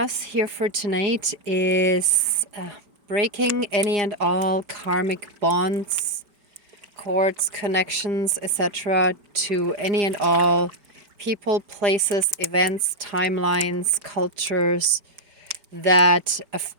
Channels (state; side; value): late; left; 4.9 ms